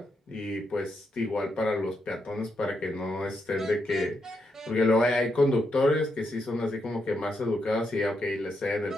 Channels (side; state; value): both; normal; correlation 0.82